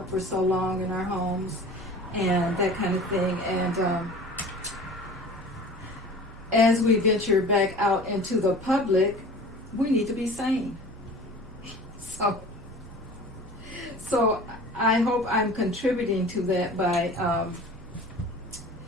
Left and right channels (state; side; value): normal; both; correlation 0.41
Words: for so long in our homes and that kind of thing. And as we venture back out into the public, we need to be sane. So I hope I'm contributing to that by